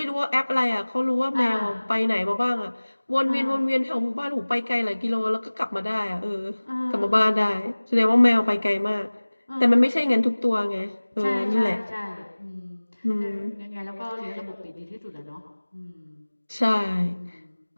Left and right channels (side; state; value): both; inverted; correlation -1.00